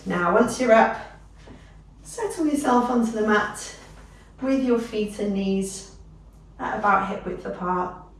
Now once you're up, settle yourself onto the mat with your feet and knees at about hip width apart.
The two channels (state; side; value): identical; both; correlation 1.00